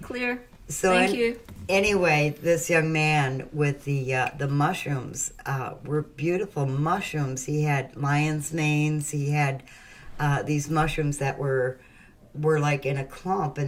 clear. So Thank you. Anyway, this young man with the mushrooms were beautiful mushrooms. He had lion's manes. He had these mushrooms that were like in a clump,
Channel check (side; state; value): both; identical; correlation 1.00